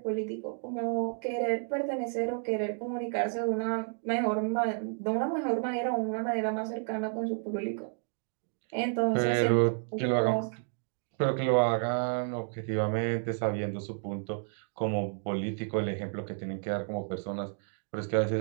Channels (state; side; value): silent; left; 57 dB below the other